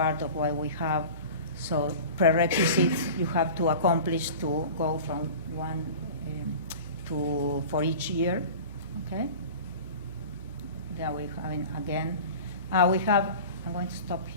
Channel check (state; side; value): inverted; both; correlation -0.37